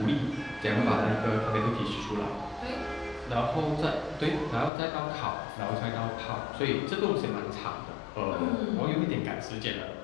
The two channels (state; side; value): drops out; right; at 4.7 s